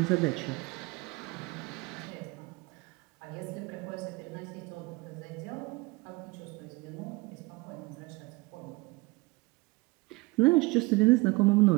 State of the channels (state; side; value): quieter; left; 23.7 dB